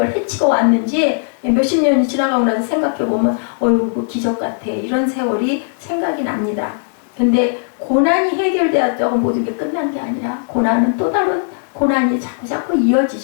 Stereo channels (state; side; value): silent; right; digital silence